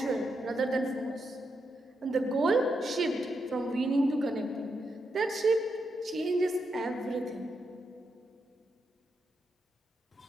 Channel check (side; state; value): both; normal; correlation 0.83